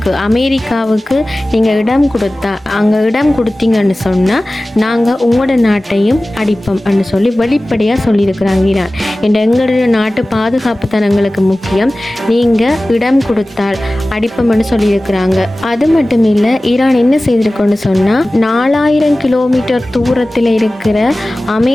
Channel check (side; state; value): both; normal; correlation 0.97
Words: அமெரிக்காவுக்கு நீங்கள் இடம் கொடுத்தீங்கன்னு சொன்னால் நாங்கள் உங்களோட நாட்டையும் அடிப்போம்னு சொல்லி வெளிப்படையாக சொல்லியிருக்கிறாங்க ஈரான். எங்களுடைய நாட்டு பாதுகாப்பு தான் எங்களுக்கு முக்கியம், நீங்கள் இடம் கொடுத்தால் அடிப்போம்னு சொல்லியிருக்கிறாங்க. அது மட்டும் இல்லை, ஈரான் என்ன செய்திருக்கோன்னு சொன்னால் 4,000 கிலோமீட்டர் தூரத்தில் இருக்கிற